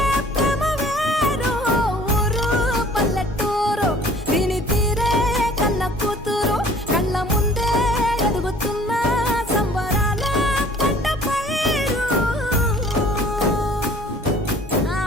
ప్రేమ వేరు ఊరు పల్లెటూరు దీని తీరే కన్న కూతురు కళ్ళ ముందే ఎదుగుతున్న సంబరాల పంట పైరు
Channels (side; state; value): both; normal; correlation 0.52